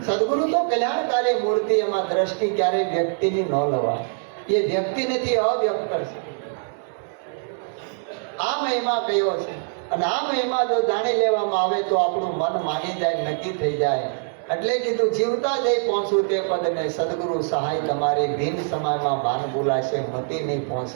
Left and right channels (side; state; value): left; silent; digital silence